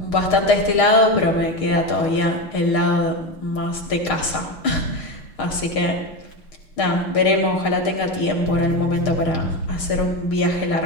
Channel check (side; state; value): right; late; 6.5 ms